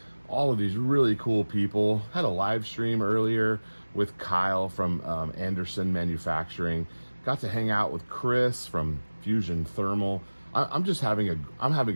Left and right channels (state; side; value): inverted; both; correlation -1.00